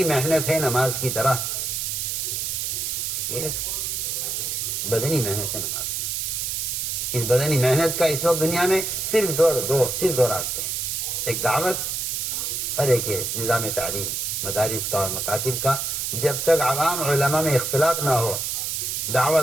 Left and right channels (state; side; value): noise; right; hiss, 1 dB below the sound